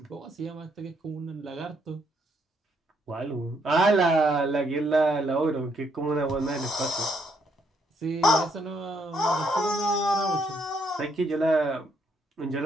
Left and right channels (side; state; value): both; normal; correlation 0.72